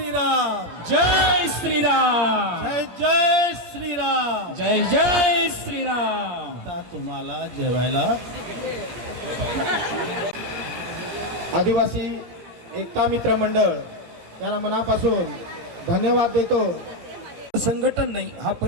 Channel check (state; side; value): late; left; 17 ms